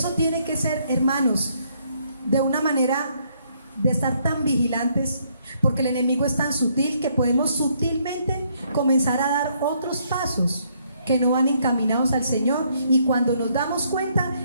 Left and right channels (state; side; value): inverted; both; correlation -0.70